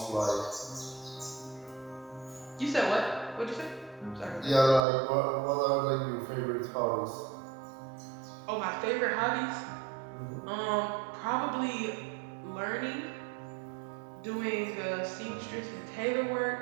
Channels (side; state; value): left; drops out; at 4.8 s